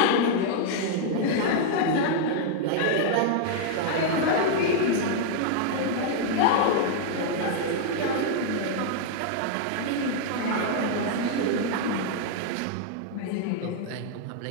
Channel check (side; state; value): both; different; correlation 0.00